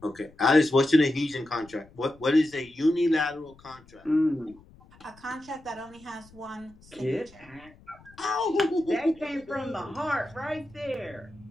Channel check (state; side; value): noise; left; rumble, 25 dB below the sound